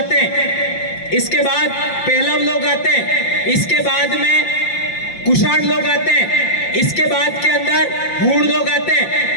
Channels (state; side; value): late; right; 5.7 ms